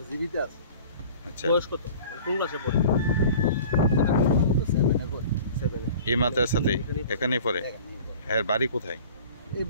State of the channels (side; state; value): both; inverted; correlation -0.45